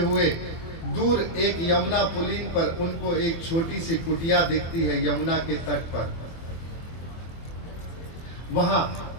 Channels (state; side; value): late; right; 24 ms